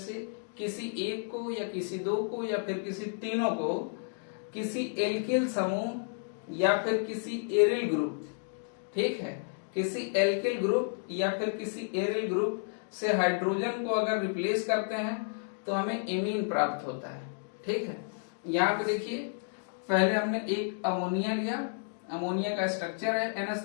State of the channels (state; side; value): silent; right; digital silence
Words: किसी एक को या किसी 2 को या फिर किसी तीनों को किसी एल्किल समूह या फिर किसी एरिल ग्रुप, ठीक है, किसी एल्किल ग्रुप या फिर किसी एरिल ग्रुप से हाइड्रोजन को अगर रिप्लेस करते हैं तो हमें एमीन प्राप्त होता है, ठीक है। यहाँ पे देखिए, पहले हमने एक अमोनिया लिया, अमोनिया का स्ट्रक्चर है